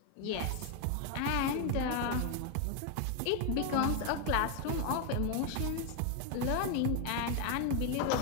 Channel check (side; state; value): both; different; correlation 0.01